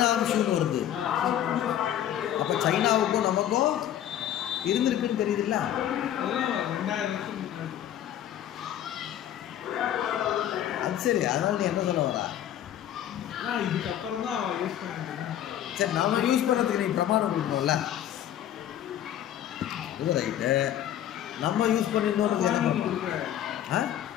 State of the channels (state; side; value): quieter; right; 11.2 dB